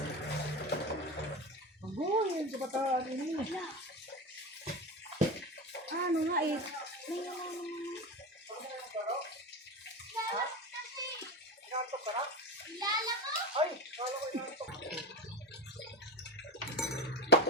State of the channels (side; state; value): both; normal; correlation 0.23